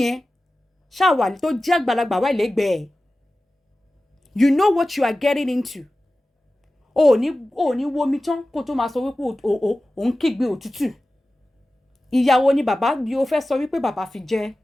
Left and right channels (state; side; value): normal; both; correlation 0.96